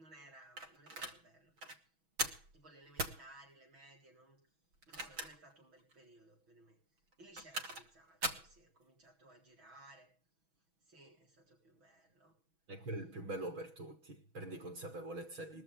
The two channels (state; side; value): late; left; 6.2 ms